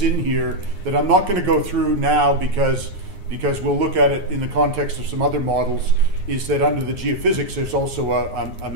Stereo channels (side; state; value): left; late; 9.7 ms